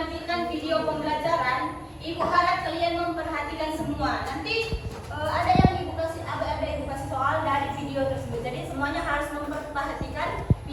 video pembelajaran. Ibu harap kalian memperhatikan semua. Nanti ada yang ibu kasih soal dari video tersebut. Jadi semuanya harus memperhatikan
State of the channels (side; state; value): both; identical; correlation 1.00